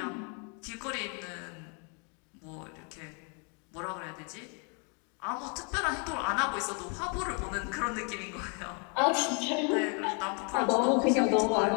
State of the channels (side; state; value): right; quieter; 37.0 dB